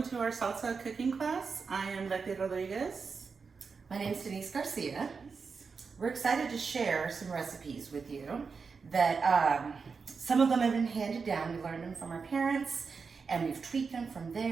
to our salsa cooking class. I am Betty Rodriguez. My name is Denise Garcia. We're excited to share some recipes with you that some of them have been handed down. We learned them from our parents and we've tweaked them from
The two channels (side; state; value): left; quieter; 5.1 dB